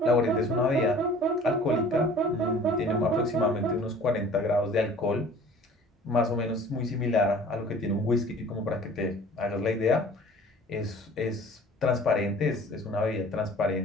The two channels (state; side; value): normal; both; correlation 0.47